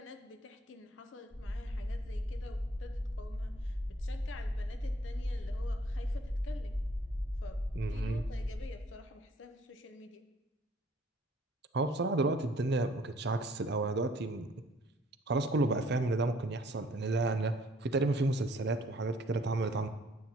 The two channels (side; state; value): both; normal; correlation 0.60